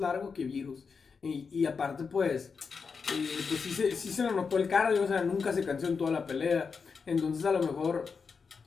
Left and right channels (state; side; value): quieter; right; 5.4 dB